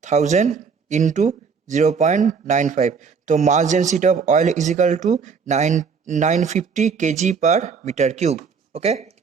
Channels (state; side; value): quieter; left; 5.7 dB